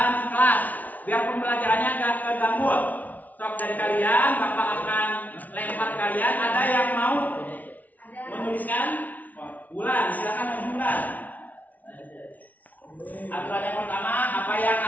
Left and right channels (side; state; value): right; late; 0.075 ms